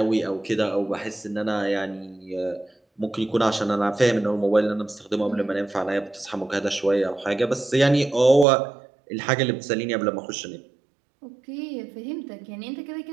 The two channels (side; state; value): left; drops out; at 8.5 s